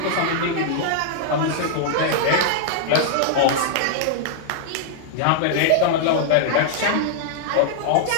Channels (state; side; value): different; both; correlation -0.01